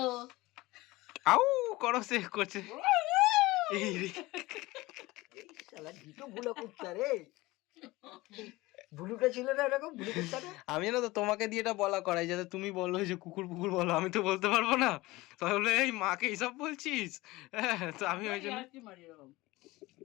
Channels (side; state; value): right; quieter; 20.2 dB